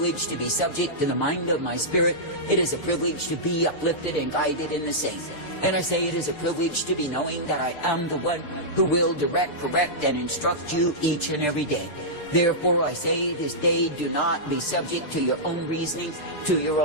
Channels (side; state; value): right; late; 6.7 ms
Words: to be subject to the mind of my spirit. It is a privilege to be uplifted and guided in the same. And I say it is a privilege to be knowing that I am the one who will direct, correct, and instruct you each and every day. Therefore I say this day, do not be subject to your own reasoning, to your